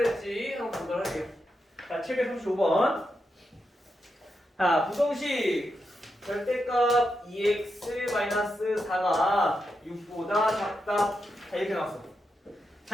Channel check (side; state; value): both; normal; correlation 0.86